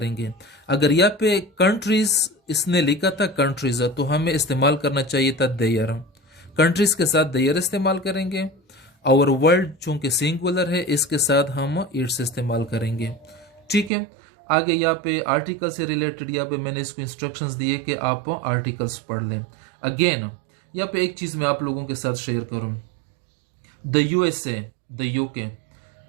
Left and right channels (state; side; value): drops out; left; at 13.9 s